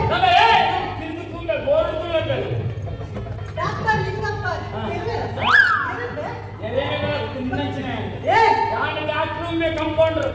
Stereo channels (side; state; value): both; identical; correlation 1.00